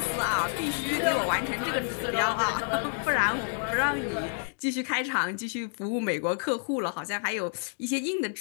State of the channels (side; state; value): right; silent; digital silence